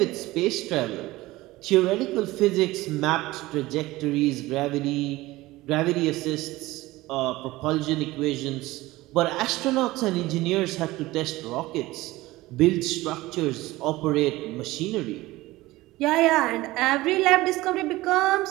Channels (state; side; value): quieter; left; 18.8 dB